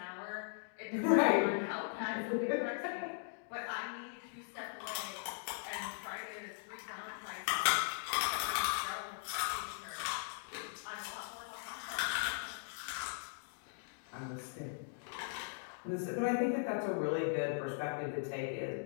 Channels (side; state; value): right; silent; digital silence